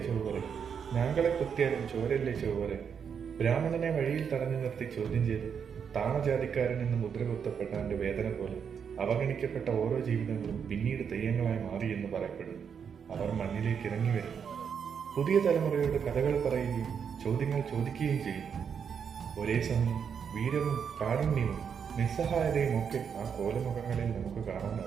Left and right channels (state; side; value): quieter; left; 7.1 dB